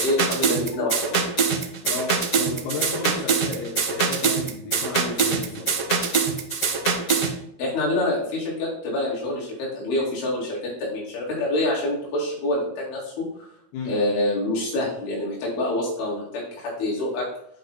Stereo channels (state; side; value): late; right; 13 ms